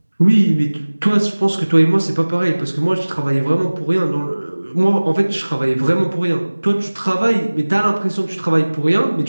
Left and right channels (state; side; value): inverted; both; correlation -1.00